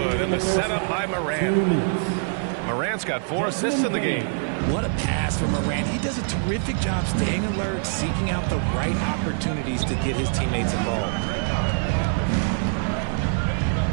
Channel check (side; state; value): left; silent; 56 dB below the other